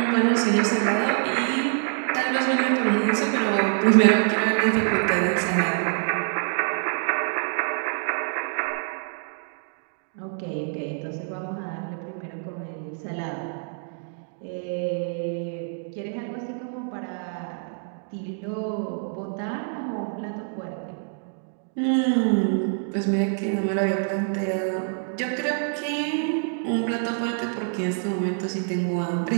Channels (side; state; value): left; silent; 60 dB below the other